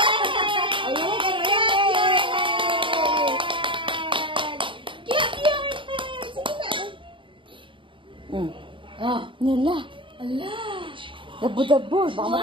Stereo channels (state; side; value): late; left; 0.24 ms